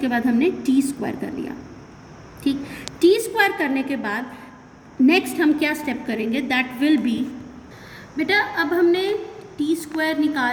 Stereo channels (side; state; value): both; identical; correlation 1.00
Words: बाद हमने T स्क्वायर कर लिया, ठीक। T स्क्वायर करने के बाद नेक्स्ट हम क्या स्टेप करेंगे, दैट विल बी, बेटा अब हमने T स्क्वायर